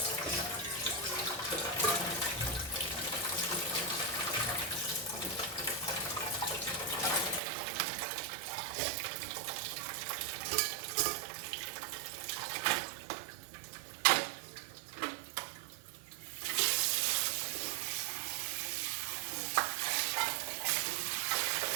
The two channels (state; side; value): drops out; left; at 7.4 s